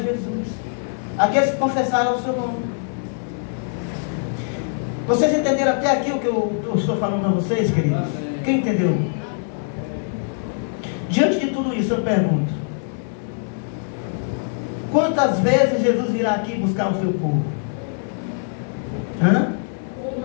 aqueles que confessaram o seu nome. Vocês entenderam até aqui o que eu estou falando a vocês, queridos? Quem entendeu? Diante de tudo isso, eu pergunto: quantas vezes Jesus virá aqui buscar o seu povo? Hã?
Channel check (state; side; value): silent; right; digital silence